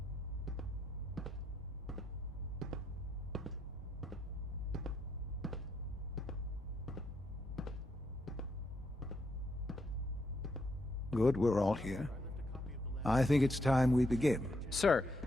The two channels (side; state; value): both; normal; correlation 0.78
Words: Good, we're all here. I think it's time we begin. Sir,